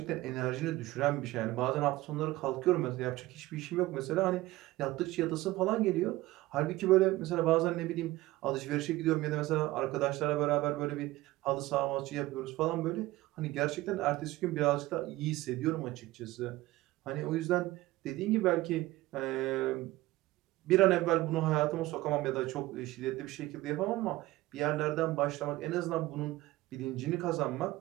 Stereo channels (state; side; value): quieter; left; 18.2 dB